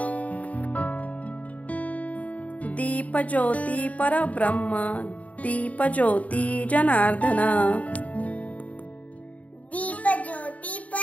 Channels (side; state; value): right; late; 0.069 ms